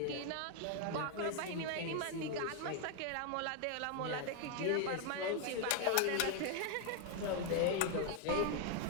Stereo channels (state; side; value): different; both; correlation 0.01